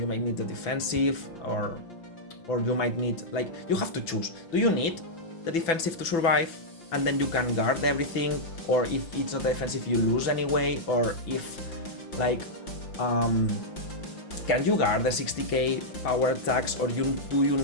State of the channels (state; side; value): late; right; 6.0 ms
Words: might need the defensive, or you might need, like, you have to choose. Do you need the defensive to survive, and then you can guard everything, or if it's not defensive, you lose anyway, or if, like, can you guard the 60k power attacks, or do you